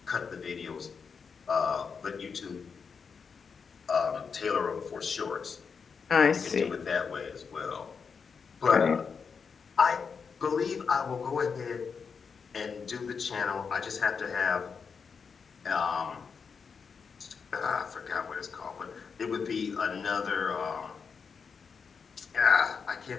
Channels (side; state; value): right; quieter; 5.8 dB